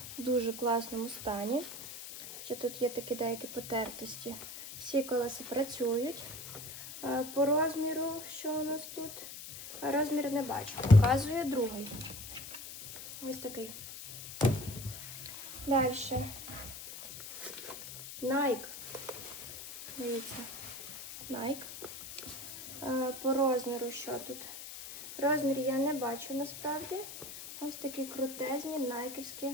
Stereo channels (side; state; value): left; noise; hiss, 11 dB below the sound